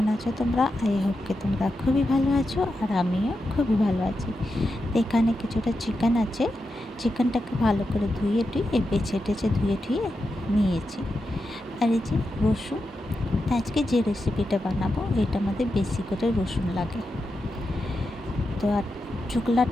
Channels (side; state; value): both; normal; correlation 0.88